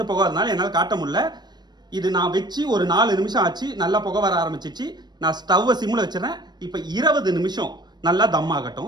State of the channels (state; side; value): late; left; 0.20 ms